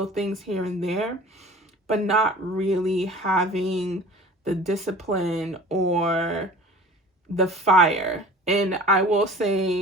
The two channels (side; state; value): both; normal; correlation 0.43